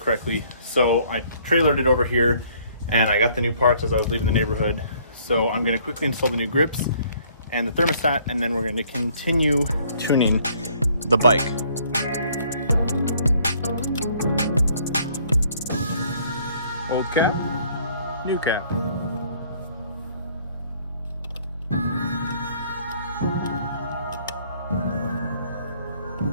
So I trailered it over here, and I got the new parts as I was leaving the neighborhood. So I'm gonna quickly install the new grips and the thermostat, and then we're gonna continue tuning the bike. Old cap, new cap.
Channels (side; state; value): both; inverted; correlation -0.61